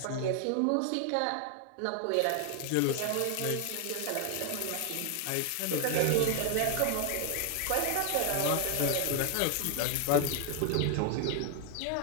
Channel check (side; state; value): both; different; correlation 0.00